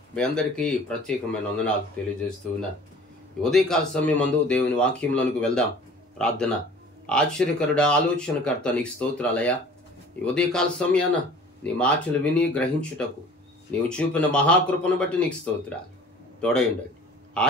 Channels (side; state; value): both; normal; correlation 0.47